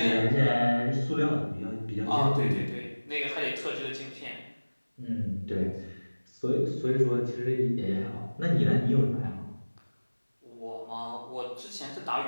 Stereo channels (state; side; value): inverted; both; correlation -1.00